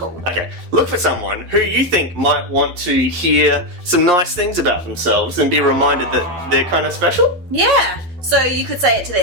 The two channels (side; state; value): left; late; 11 ms